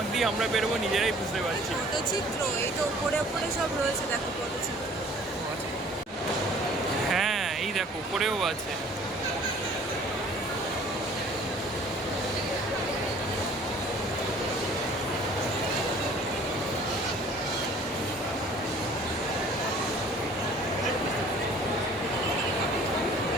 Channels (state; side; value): normal; both; correlation 0.52